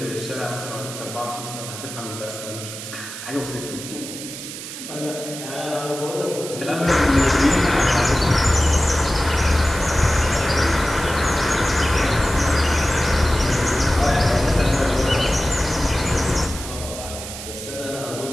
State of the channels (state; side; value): noise; right; hiss, 10 dB below the sound